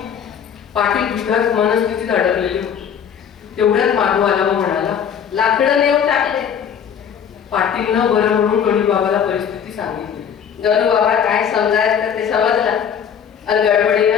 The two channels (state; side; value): quieter; right; 7.9 dB